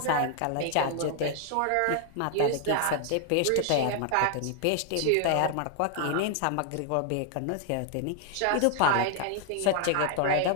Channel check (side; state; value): both; different; correlation 0.00